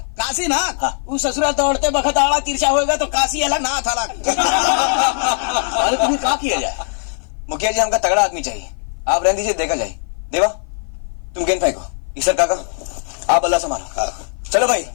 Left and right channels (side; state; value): right; silent; 56 dB below the other